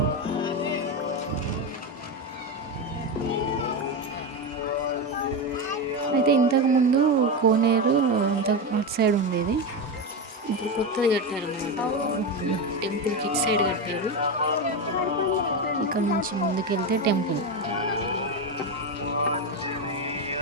అయితే ఇంతకుముందు కోనేరు అంత అటు సైడ్ ఉండేది. ఇప్పుడు కొత్తది కట్టారన్నమాట. టెంపుల్కి ఇటు సైడ్ కట్టారు. ఇక్కడ నుంచి ముందుకెళ్తే టెంపుల్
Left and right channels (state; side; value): normal; both; correlation 0.14